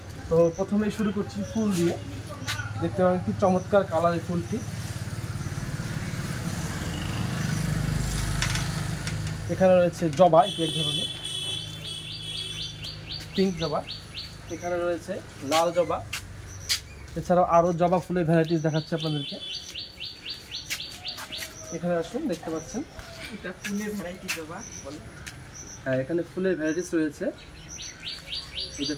তো প্রথমেই শুরু করছি ফুল দিয়ে। দেখতে পাবেন কি চমৎকার কালারের ফুলটি। এখানে রয়েছে জবা, এক ধরনের পিঙ্ক জবা। এখানে রয়েছে লাল জবা। এছাড়াও আরও জবা ফুলের ভ্যারাইটিস দেখাচ্ছে আপনাদেরকে। এখানে আসুন, দেখতে পাচ্ছেন এটা ফুলের ভ্যারাইটি জবা বলে। হ্যাঁ, এখানে ফুলের ভ্যারাইটিস রয়েছে। এই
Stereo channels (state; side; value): identical; both; correlation 1.00